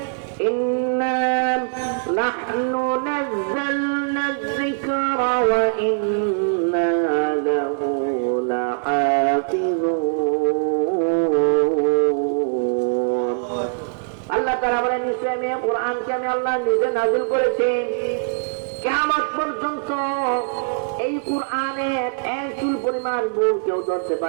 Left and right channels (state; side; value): silent; left; digital silence